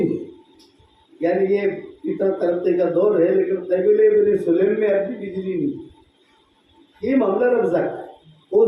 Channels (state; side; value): identical; both; correlation 1.00